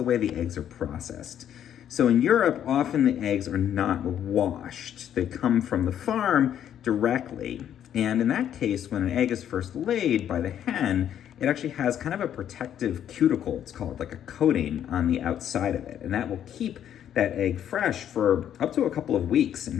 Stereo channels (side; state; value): right; quieter; 10.0 dB